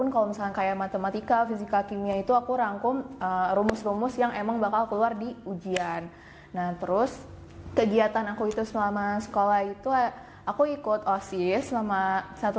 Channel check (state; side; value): identical; both; correlation 1.00